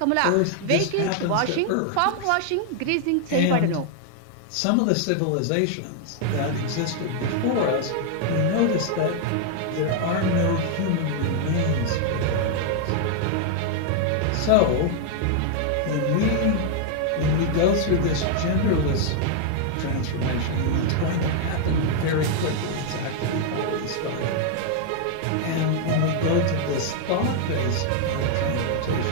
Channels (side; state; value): both; different; correlation 0.00